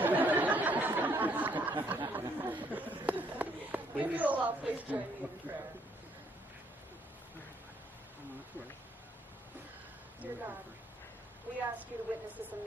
If you will all please join me in prayer. Dear God, we ask you to witness this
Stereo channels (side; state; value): both; normal; correlation 0.69